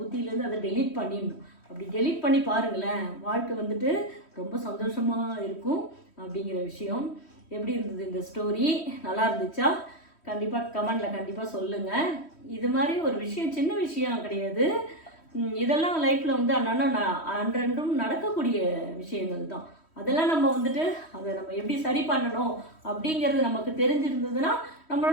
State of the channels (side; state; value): right; late; 3.1 ms